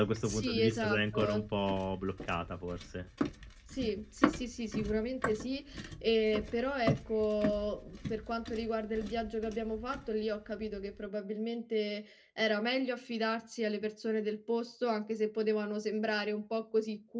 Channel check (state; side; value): identical; both; correlation 1.00